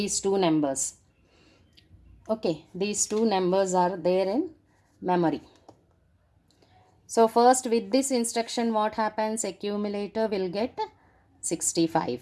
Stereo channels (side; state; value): both; identical; correlation 1.00